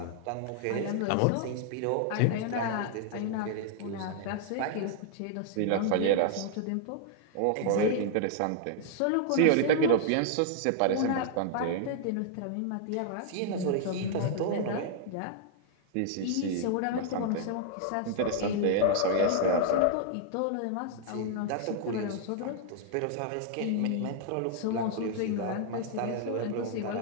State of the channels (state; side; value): different; both; correlation -0.01